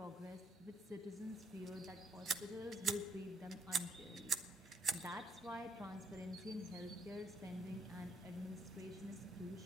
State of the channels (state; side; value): normal; both; correlation 0.70